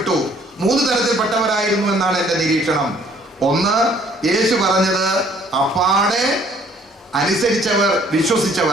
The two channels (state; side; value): normal; both; correlation 0.60